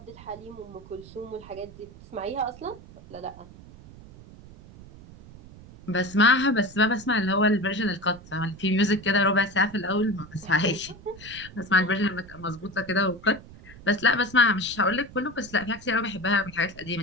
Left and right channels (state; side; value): noise; right; rumble, 19 dB below the sound